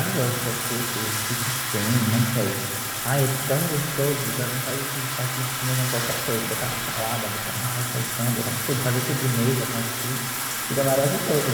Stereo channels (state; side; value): identical; both; correlation 1.00